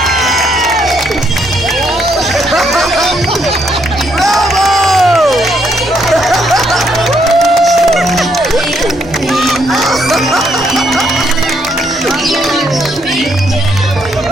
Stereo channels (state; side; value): normal; both; correlation 0.73